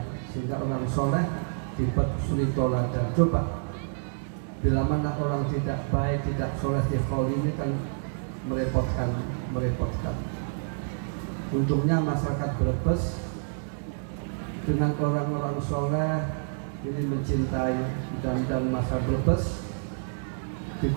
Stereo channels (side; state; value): left; silent; digital silence